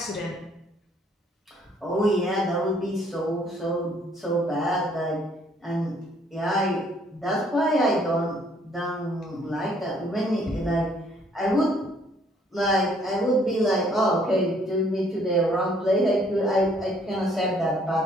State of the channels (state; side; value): normal; both; correlation 0.64